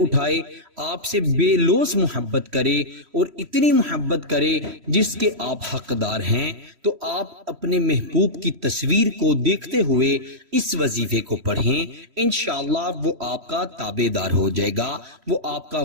آپ سے بے لوث محبت کرے اور اتنی محبت کرے جس کے آپ حقدار ہیں، تو آپ اپنے محبوب کی تصویر کو دیکھتے ہوئے اس وظیفے کو پڑھیں۔ انشاءاللہ وہ آپ کا تابع دار ہو جائے گا، وہ آپ کا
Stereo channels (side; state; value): left; late; 3.1 ms